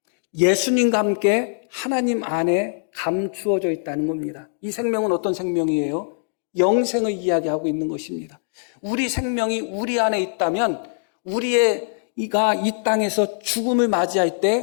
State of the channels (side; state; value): right; silent; digital silence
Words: 예수님과 함께 하나님 안에 감추어져 있다는 겁니다. 이 생명은 어떤 생명이에요? 영생을 이야기하고 있는 것입니다. 우리 생명이 우리 안에 있다면 우리가 이 땅에서 죽음을 맞이할